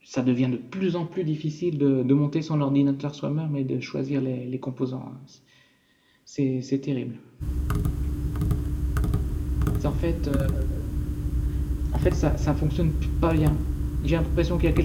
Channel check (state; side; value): identical; both; correlation 1.00